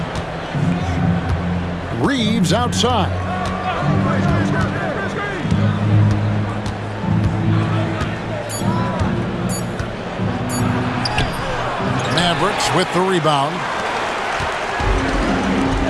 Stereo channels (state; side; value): identical; both; correlation 1.00